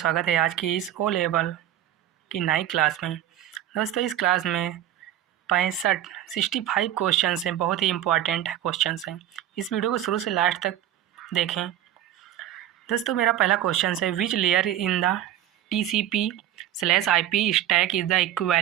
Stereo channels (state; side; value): quieter; left; 12.0 dB